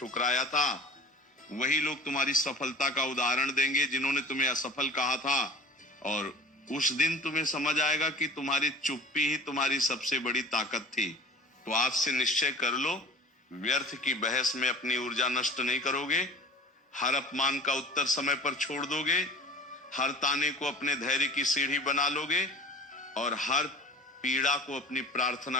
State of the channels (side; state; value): both; normal; correlation 0.41